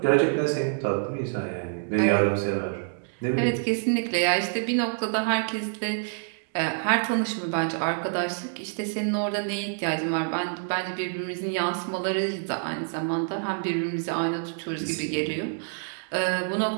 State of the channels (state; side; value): silent; left; digital silence